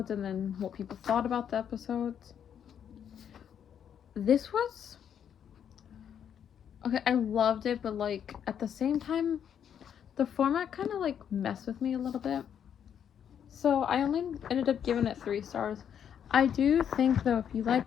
and then what people thought about the episodes. This was okay. I loved it, but like at the same time, the format kind of like messed with me a little bit. So I only ended up giving it 3 stars. I do think though, if you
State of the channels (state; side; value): quieter; right; 8.7 dB